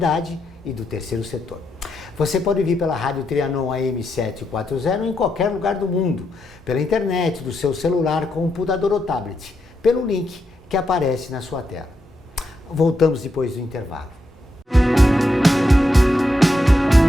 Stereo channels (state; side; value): normal; both; correlation 0.82